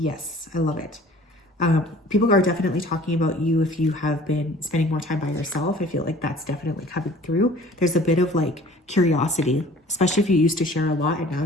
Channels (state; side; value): normal; both; correlation 0.49